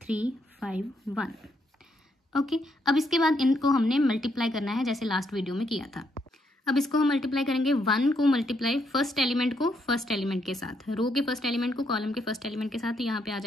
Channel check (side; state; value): both; normal; correlation 0.76